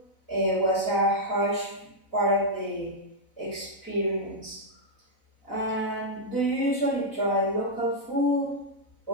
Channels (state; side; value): late; right; 4.0 ms